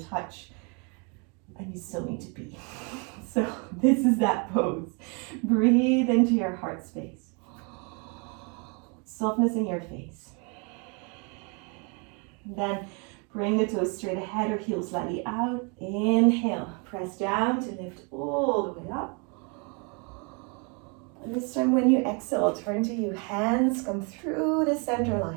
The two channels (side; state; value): left; quieter; 34.1 dB